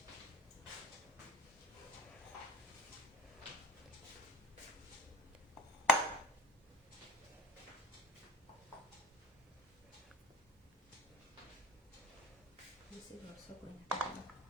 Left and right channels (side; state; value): both; normal; correlation 0.37